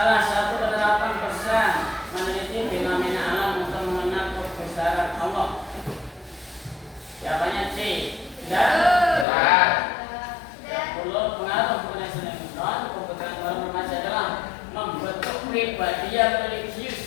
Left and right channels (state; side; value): drops out; right; at 9.2 s